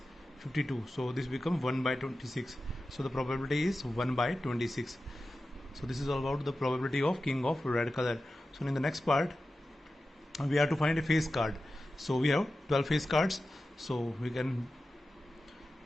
52. So this becomes 1 by 26. So the probability is 1 by 26. So this is all about the probability of king of red color. So in the next part we have to find a face card. So we have 12 face cards, so we can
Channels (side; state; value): both; normal; correlation 0.93